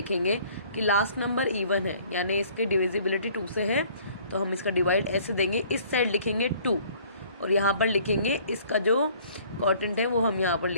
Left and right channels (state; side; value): inverted; both; correlation -0.56